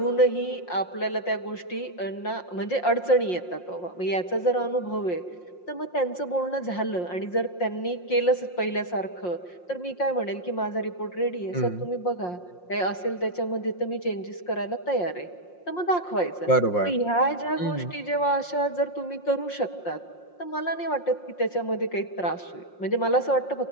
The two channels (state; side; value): late; right; 5.6 ms